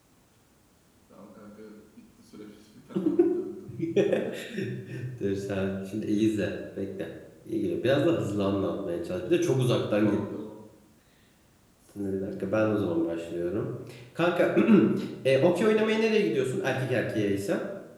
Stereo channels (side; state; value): both; identical; correlation 1.00